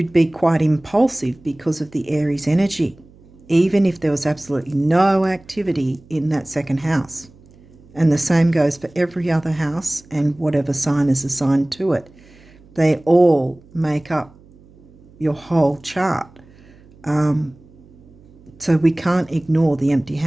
be quite impulsive because of the Aries energy, even if there was absolutely no activity in that second house. And the same goes for every other house and whatever sign is assigned to it. They all make up your whole chart. So we can't ignore the empty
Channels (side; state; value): right; noise; hum, 26 dB below the sound